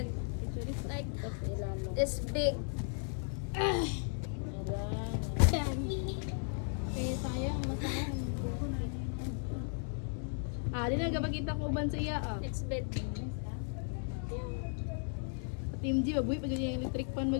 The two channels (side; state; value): right; silent; 54 dB below the other